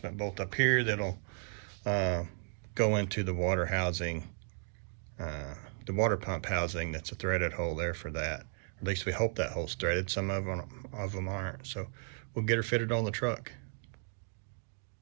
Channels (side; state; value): left; silent; digital silence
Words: bolt up here that'll go into the water housing, the water pump housing. That's a threaded hole there for that. At least we hope that hole's threaded. Some of them aren't. So we'll get her fitted on the truck.